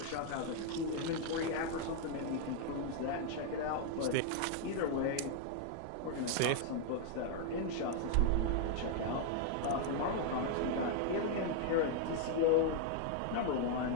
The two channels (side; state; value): both; different; correlation 0.00